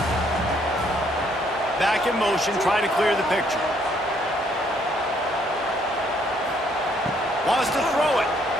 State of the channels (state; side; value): normal; both; correlation 0.67